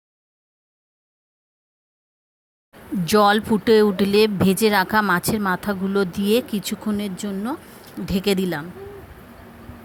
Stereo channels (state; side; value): identical; both; correlation 1.00